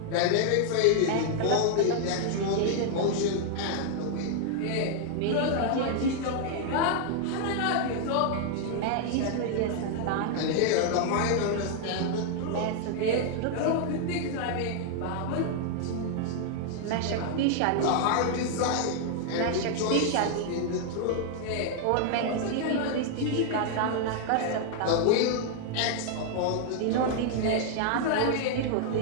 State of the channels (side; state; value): both; different; correlation 0.00